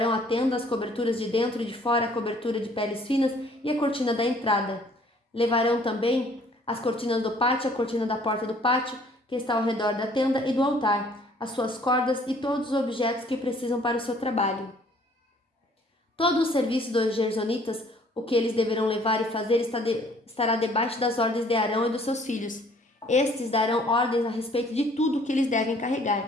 à tenda as coberturas de dentro e de fora, a cobertura de peles finas e a cortina da entrada. Levarão também as cortinas do pátio, a cortina da porta do pátio, que está ao redor da tenda e do altar, as suas cordas e todos os objetos que precisam para o seu trabalho. Todo o serviço dos gersonitas, o que eles deverão levar e fazer, estará debaixo das ordens de Arão e dos seus filhos. Estes darão ordens a respeito de tudo o que eles devem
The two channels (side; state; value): both; normal; correlation 0.58